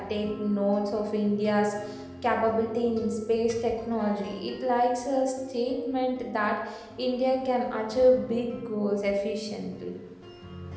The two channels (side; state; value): both; identical; correlation 1.00